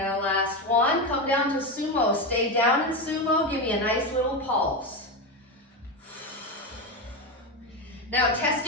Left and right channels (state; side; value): normal; both; correlation 0.14